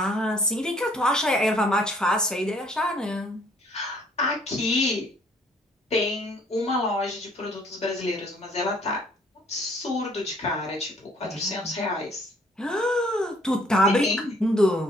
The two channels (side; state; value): both; normal; correlation 0.61